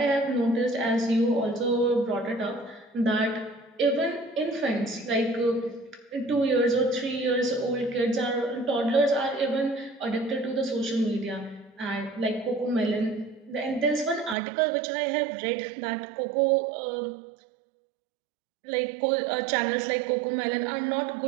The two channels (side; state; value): left; drops out; at 14.4 s